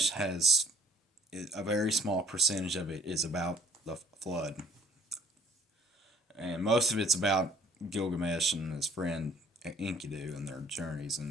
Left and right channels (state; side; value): normal; both; correlation 0.60